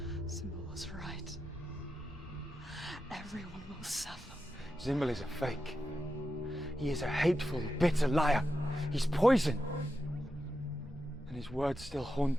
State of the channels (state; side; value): normal; both; correlation 0.88